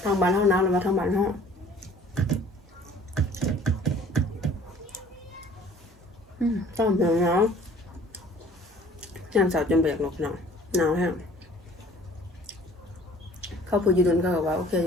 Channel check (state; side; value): normal; both; correlation 0.52